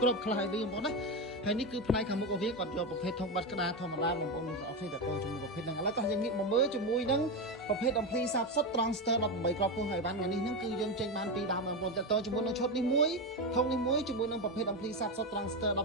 គ្រាប់ខ្លះឲ្យវិញបងប្អូនណាហើយនេះគឺផ្នែកខាងមុខរបស់វាគាត់យកប្រភេទធុងបាត់ក្តារធម្មតាបងប្អូនទាំងអស់គ្នាតើជាមួយប្រភេទហ្នឹងឥឡូវតោះយើងងាកមកមើលជាមួយនឹងប្រភេទអំភ្លីសាបសុទ្ធ Trangster 18គ្រាប់ពោះហើយបានថ្ងៃនេះហ្នឹងគឺយើងចេញបានពីរដើមបងប្អូនតើជាមួយនឹងឈុតនេះមួយធុងនេះមួយជាមួយនឹងប្រភេទអំភ្លីសាបសុទ្ធ Trangster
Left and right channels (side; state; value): both; normal; correlation 0.14